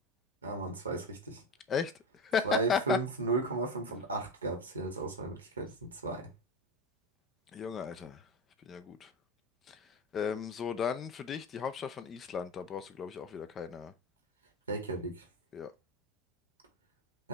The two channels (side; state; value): both; normal; correlation 0.22